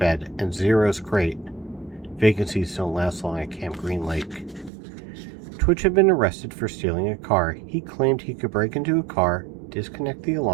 and Zero's crate. Vacancies don't last long at Camp Green Lake. Twitch had been arrested for stealing a car. He claimed he could break into a car, disconnect the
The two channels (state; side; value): drops out; left; at 4.7 s